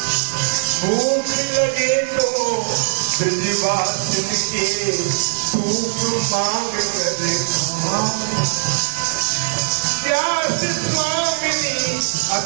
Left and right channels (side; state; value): left; silent; digital silence